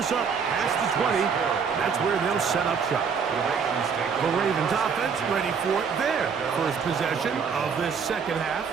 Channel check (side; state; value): left; quieter; 6.2 dB